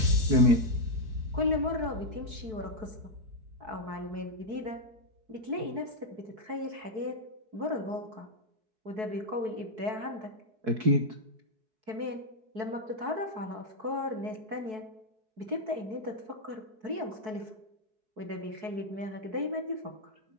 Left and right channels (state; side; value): late; left; 4.6 ms